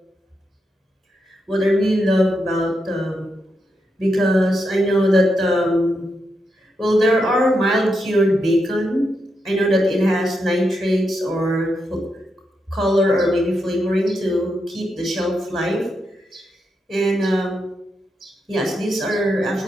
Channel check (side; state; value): both; normal; correlation 0.84